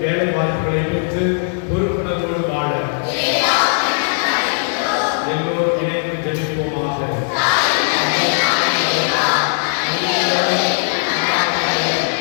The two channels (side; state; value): right; silent; digital silence